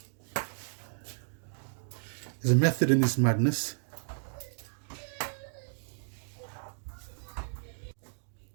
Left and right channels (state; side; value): silent; left; digital silence